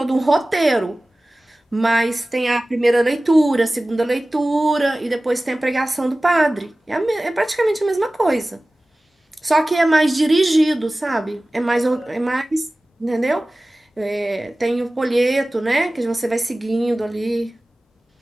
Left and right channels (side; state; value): both; normal; correlation 0.97